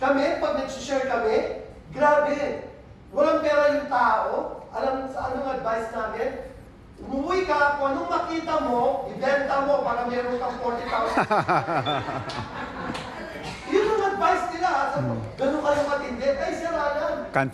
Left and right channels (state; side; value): identical; both; correlation 1.00